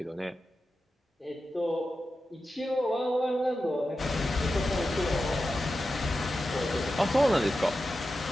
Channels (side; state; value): both; normal; correlation 0.91